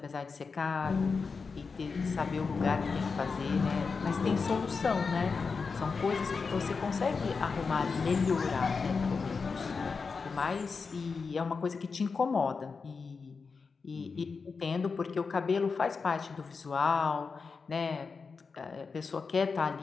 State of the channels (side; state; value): right; quieter; 4.9 dB